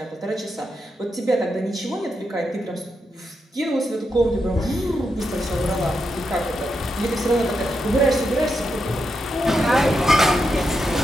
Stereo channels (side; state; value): both; normal; correlation 0.84